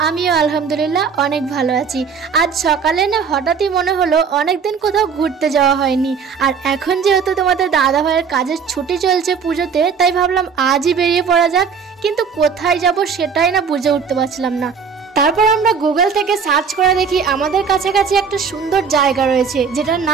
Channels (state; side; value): quieter; left; 6.1 dB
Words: আমিও আলহামদুলিল্লাহ অনেক ভালো আছি। আজ সকালে না হঠাৎই মনে হলো অনেকদিন কোথাও ঘুরতে যাওয়া হয়নি, আর এখন যেহেতু তোমাদের দাদা ভাইয়ের কাজের ছুটি চলছে পুজোতে, তাই ভাবলাম আজই বেরিয়ে পড়া যাক। কিন্তু কোথায় যাব সেটাই না বুঝে উঠতে পারছিলাম না। তারপর আমরা গুগল থেকে সার্চ করে দেখি আমাদের কাছাকাছি একটা সুন্দর জায়গা রয়েছে, যেটার